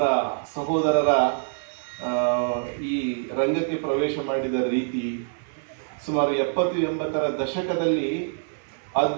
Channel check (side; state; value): left; silent; 62 dB below the other